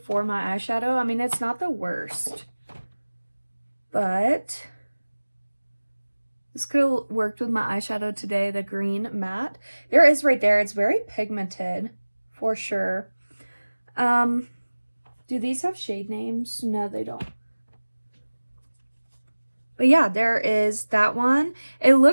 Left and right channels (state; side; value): inverted; both; correlation -1.00